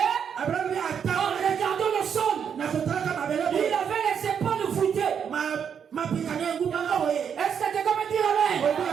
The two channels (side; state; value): left; quieter; 7.6 dB